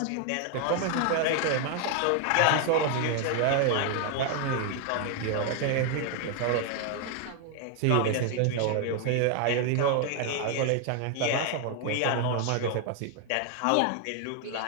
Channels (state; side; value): different; both; correlation 0.00